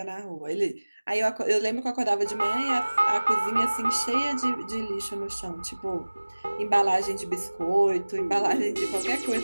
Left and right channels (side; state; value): both; inverted; correlation -1.00